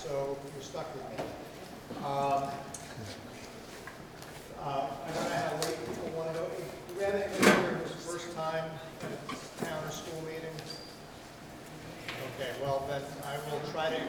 you're stuck with me. I don't know how late people want to go. Do we have anybody here who's first time at a town or school meeting? Okay, well then I will try to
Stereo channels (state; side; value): identical; both; correlation 1.00